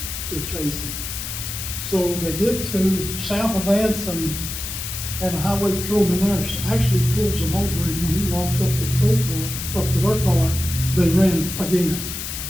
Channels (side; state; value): left; noise; hiss, 6 dB below the sound